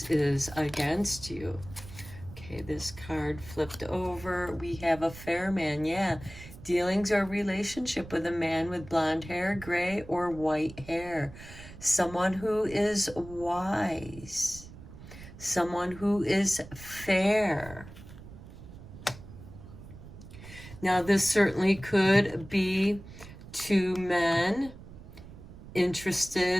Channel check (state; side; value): noise; right; rumble, 16 dB below the sound